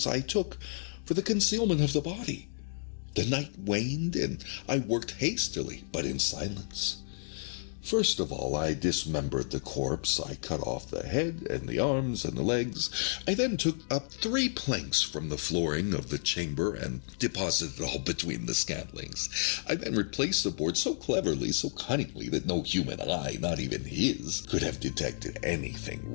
I took for the concealment of the body. The night waned, and I worked hastily, but in silence. First of all, I dismembered the corpse. I cut off the head and the arms and the legs. I then took up 3 planks from the flooring of the chamber and deposited it all between the scantlings. I then replaced the board so cleverly, so cunningly, that no human eye, not even his, could have detected anything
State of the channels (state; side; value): silent; right; digital silence